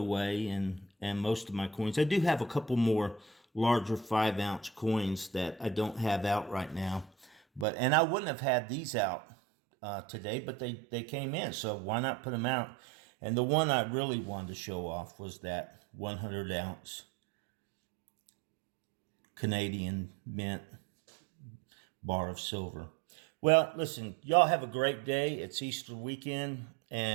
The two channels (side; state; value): left; drops out; at 7.7 s